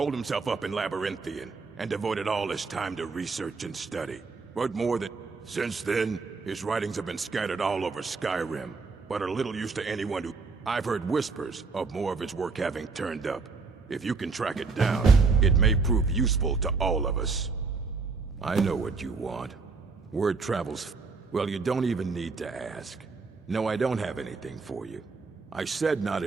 himself up in Labyrinthian, and devoted all his time to research and study. But more than... Since then, his writings have been scattered all over Skyrim, but are little use to anyone who... I've heard whispers of more of his work having turned up. If you can track it down, it may prove useful to all of us. I know what you want. Word travels... Well, you don't even need to ask. No, I don't have anything for you. I said not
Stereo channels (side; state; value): left; quieter; 4.4 dB